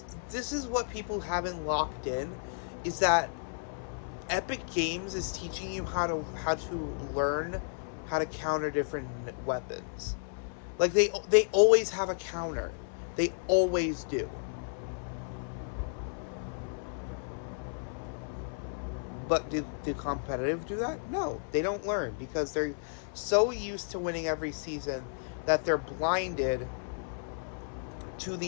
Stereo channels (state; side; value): silent; right; 56 dB below the other